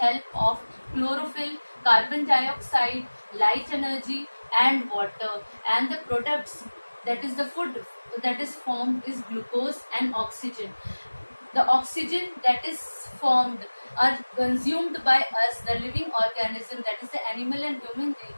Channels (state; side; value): inverted; both; correlation -1.00